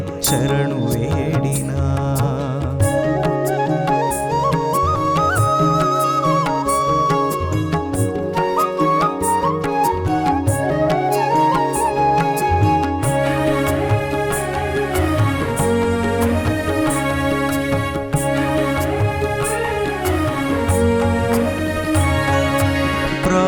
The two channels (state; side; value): identical; both; correlation 1.00